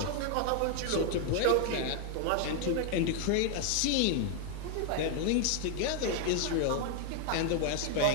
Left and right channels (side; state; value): both; different; correlation 0.00